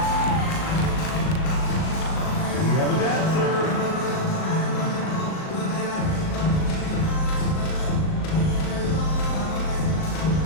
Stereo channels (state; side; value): late; right; 38 ms